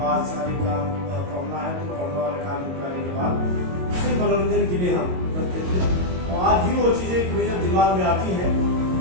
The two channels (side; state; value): left; late; 22 ms